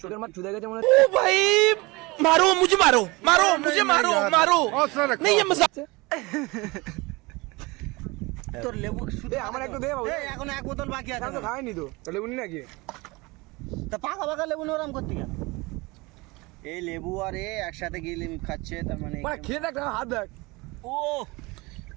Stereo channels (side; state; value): left; quieter; 24.1 dB